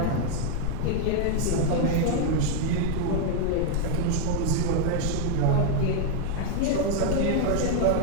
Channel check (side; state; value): both; different; correlation 0.00